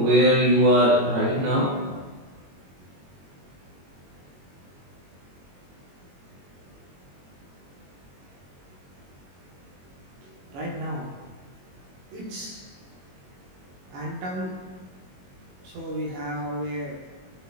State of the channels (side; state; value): left; late; 22 ms